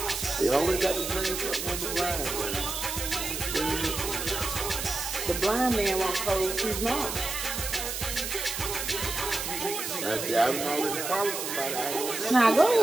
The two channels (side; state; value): right; noise; hiss, 4 dB below the sound